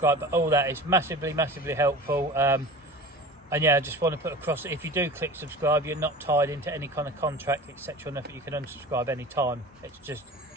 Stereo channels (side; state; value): both; normal; correlation 0.36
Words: button, all that is massively helpful. And yeah, I just want to put across that if you do click subscribe, you're not tied into any kind of contract, etc. Nothing, you can unsubscribe any time. It just